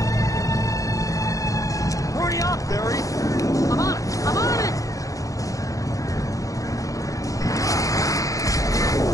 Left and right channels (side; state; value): right; late; 0.16 ms